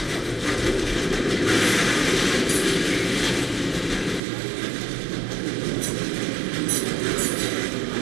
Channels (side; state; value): left; drops out; at 4.2 s